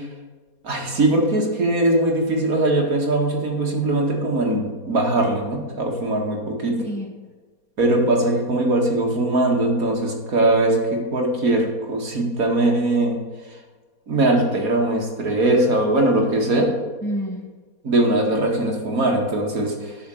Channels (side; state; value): left; late; 4.2 ms